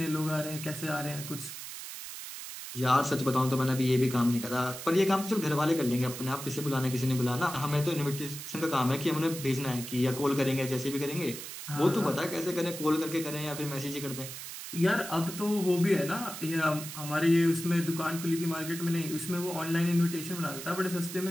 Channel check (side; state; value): right; noise; hiss, 10 dB below the sound